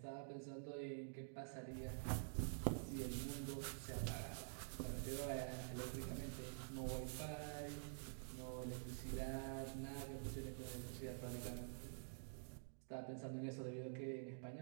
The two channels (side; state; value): left; silent; digital silence